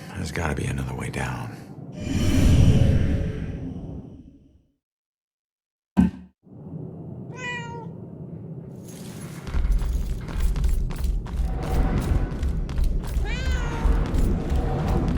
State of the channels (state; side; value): identical; both; correlation 1.00